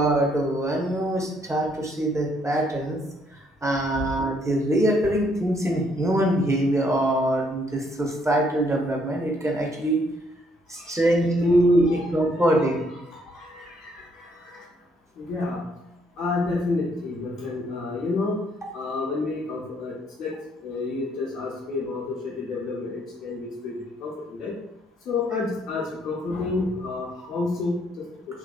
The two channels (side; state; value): both; normal; correlation 0.69